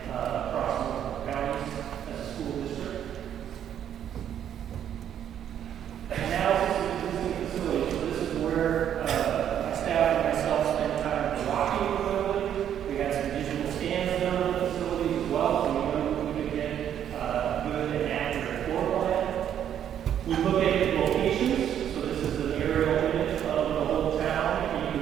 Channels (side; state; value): left; quieter; 9.8 dB